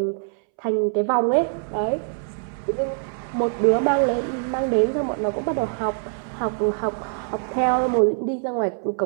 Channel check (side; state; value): left; silent; 63 dB below the other